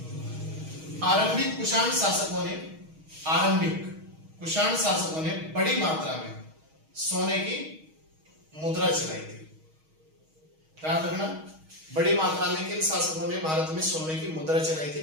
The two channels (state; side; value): late; left; 6.3 ms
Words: आरंभिक कुषाण शासकों ने बड़ी मात्रा में सोने की मुद्रा चलाई थी। याद रखना बड़ी मात्रा में किन शासकों ने भारत में सोने की मुद्रा चलाई